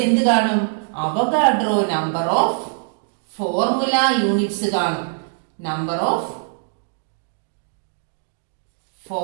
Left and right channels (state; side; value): silent; left; digital silence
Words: എന്ത് കാണും? Avogadro number of formula units കാണും. Number of